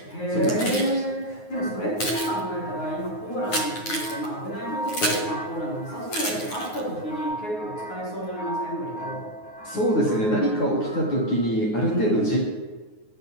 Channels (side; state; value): right; late; 9.5 ms